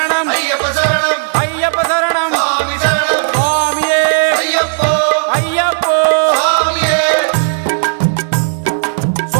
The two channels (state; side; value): silent; left; digital silence